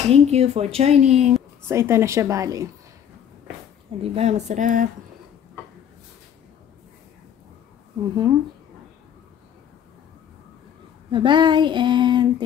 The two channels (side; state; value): right; quieter; 9.1 dB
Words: Thank you for joining. So, ito na siya bali. Diba? Masarap. Bye-bye and